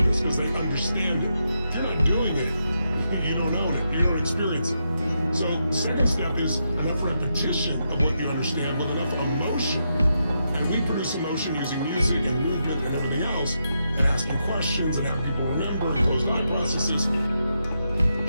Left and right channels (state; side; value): inverted; both; correlation -0.83